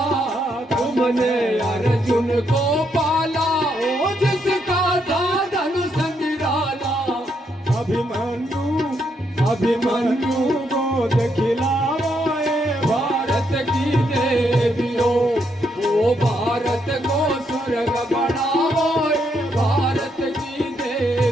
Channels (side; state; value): both; normal; correlation 0.77